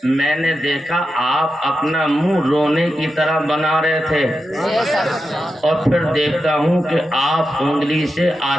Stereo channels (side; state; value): both; normal; correlation 0.89